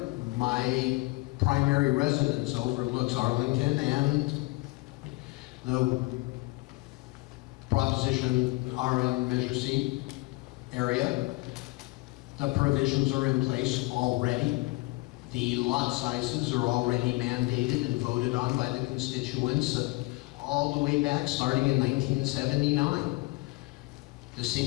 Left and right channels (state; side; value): quieter; right; 23.8 dB